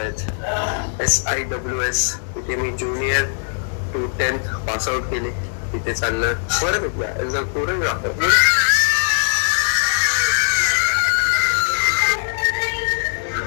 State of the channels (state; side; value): silent; right; digital silence